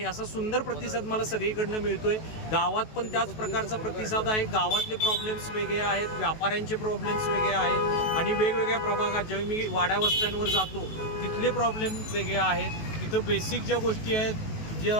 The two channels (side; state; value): right; late; 19 ms